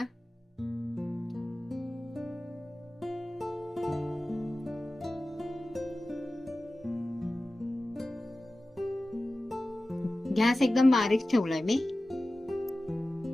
गॅस एकदम बारीक ठेवलाय मी.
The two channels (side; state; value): both; normal; correlation 0.96